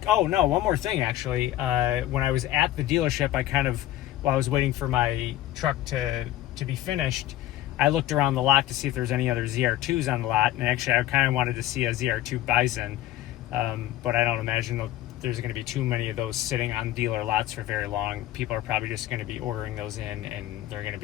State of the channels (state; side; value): quieter; right; 14.0 dB